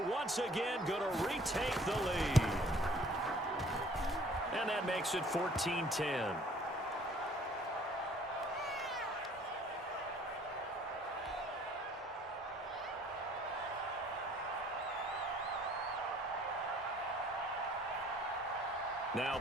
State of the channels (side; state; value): both; normal; correlation 0.54